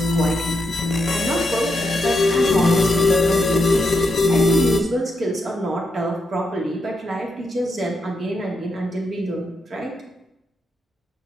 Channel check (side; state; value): both; normal; correlation 0.83